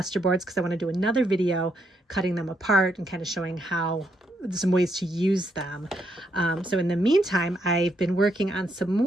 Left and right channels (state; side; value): normal; both; correlation 0.76